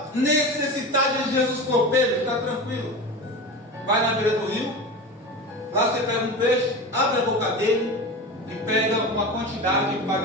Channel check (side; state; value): both; normal; correlation 0.28